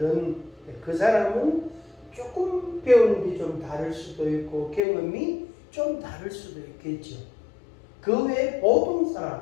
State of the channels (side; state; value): right; drops out; at 4.8 s